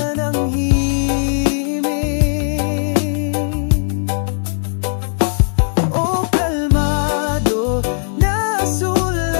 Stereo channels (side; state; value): right; silent; digital silence